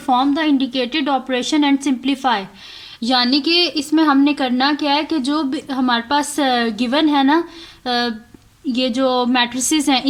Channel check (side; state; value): both; identical; correlation 1.00